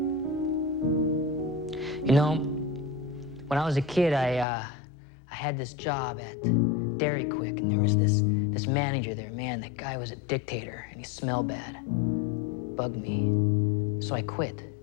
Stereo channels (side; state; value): right; drops out; at 4.5 s